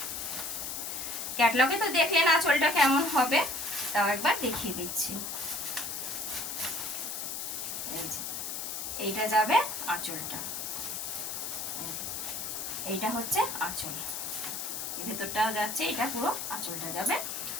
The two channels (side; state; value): left; noise; hiss, 4 dB below the sound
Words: ক্যাটলগে তো দেখলেন আঁচলটা কেমন হবে, তাও একবার দেখিয়ে দিচ্ছি। এইটা যাবে আঁচলটা, এইটা হচ্ছে আঁচল, এই ভেতরটাও যাচ্ছে, এটা পুরো আঁচলটা যাবে।